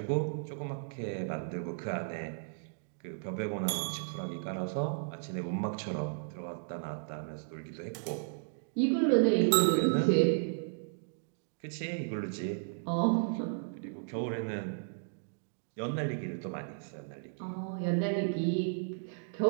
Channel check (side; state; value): left; silent; digital silence